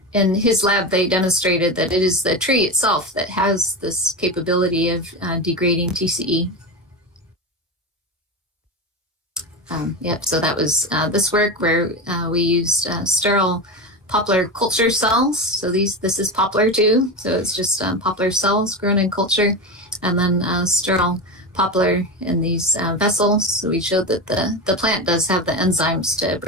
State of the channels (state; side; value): normal; both; correlation 0.21